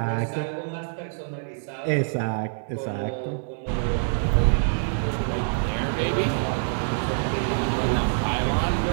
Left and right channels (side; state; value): left; silent; digital silence